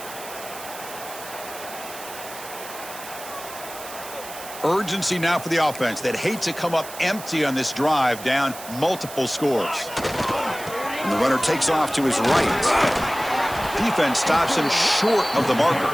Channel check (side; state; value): right; noise; hiss, 13 dB below the sound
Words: Urgency now for the offense. They'd hate to come up empty on this drive, down multiple scores. And the runner takes off to his right. Defense stops him short of the